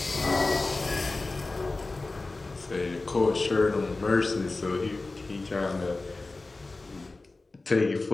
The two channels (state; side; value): quieter; right; 3.4 dB